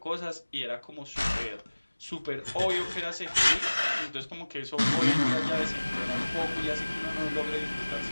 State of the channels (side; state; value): both; inverted; correlation -1.00